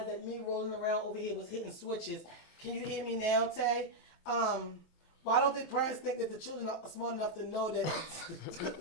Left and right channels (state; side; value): late; right; 26 ms